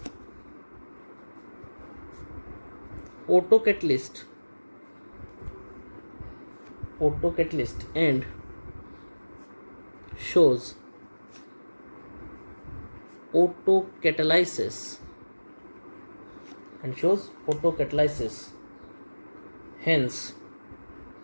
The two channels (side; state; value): both; inverted; correlation -1.00